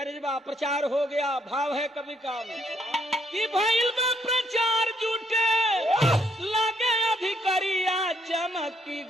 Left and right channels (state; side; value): normal; both; correlation 0.72